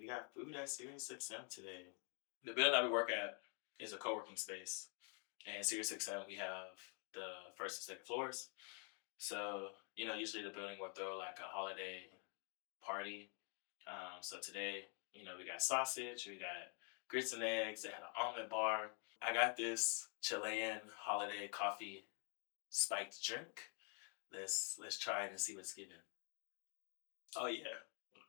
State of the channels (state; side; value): quieter; right; 39.2 dB